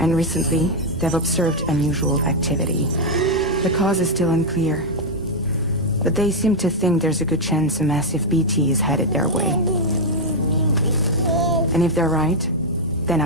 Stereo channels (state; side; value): normal; both; correlation 0.00